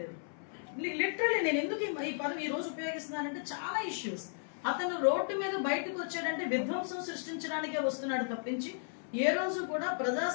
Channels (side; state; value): right; silent; 55 dB below the other